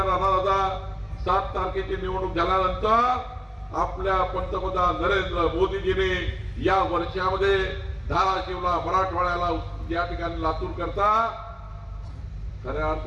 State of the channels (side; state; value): both; identical; correlation 1.00